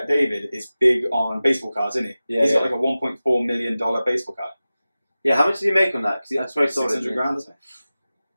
is big on baseball cards, isn't he? Yeah, He's got like a $1.4 million baseball card. Yeah, how much did he make on that? Because that's very solid. 600 grand, isn't it?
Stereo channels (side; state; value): both; inverted; correlation -0.96